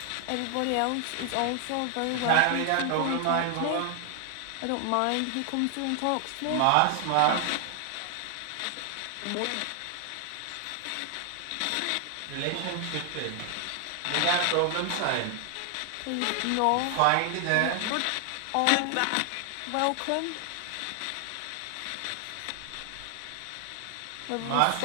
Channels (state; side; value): different; both; correlation 0.00